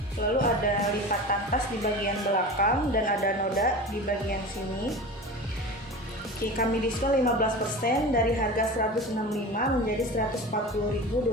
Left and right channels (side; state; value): both; normal; correlation 0.32